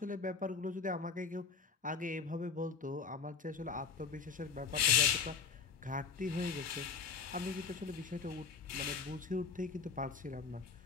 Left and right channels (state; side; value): quieter; right; 5.6 dB